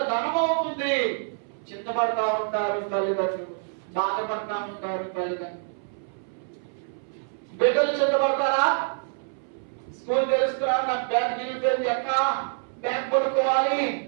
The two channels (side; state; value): left; silent; 61 dB below the other